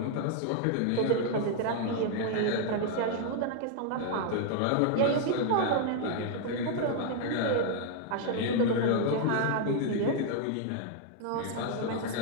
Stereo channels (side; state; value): both; different; correlation 0.00